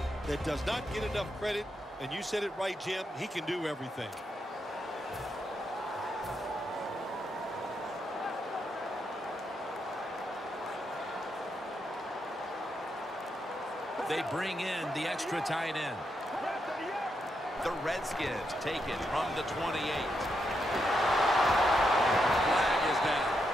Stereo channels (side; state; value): both; normal; correlation 0.82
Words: that does not get enough credit. And you said it right, Jim. He can do everything. They bring in the extra tight end. The Redskins take it from the 28. Flag is down.